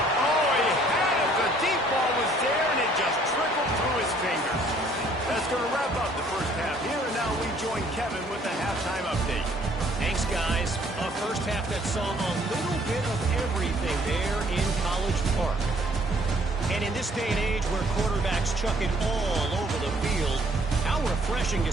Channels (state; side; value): normal; both; correlation 0.61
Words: Oh, he had it. The deep ball was there, and it just trickled through his fingers. That's going to wrap up the first half here, and now we join Kevin with the halftime update. Thanks, guys. A first half that saw a little bit of everything there in College Park. And in this day and age where quarterbacks chuck it all over the field, how refreshing to